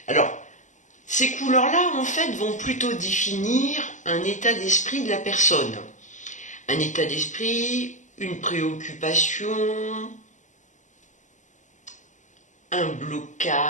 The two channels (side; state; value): right; late; 0.36 ms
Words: Alors, ces couleurs-là, en fait, vont plutôt définir un état d'esprit de la personne. Un état d'esprit, une préoccupation, un